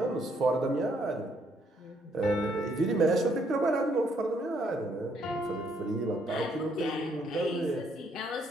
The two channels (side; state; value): both; normal; correlation 0.70